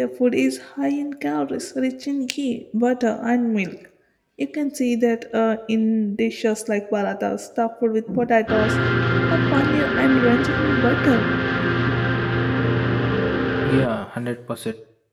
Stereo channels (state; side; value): identical; both; correlation 1.00